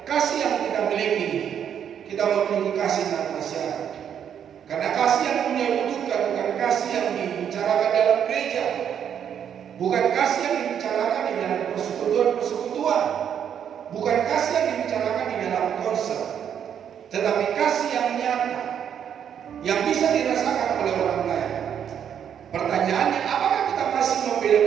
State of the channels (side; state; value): left; quieter; 8.7 dB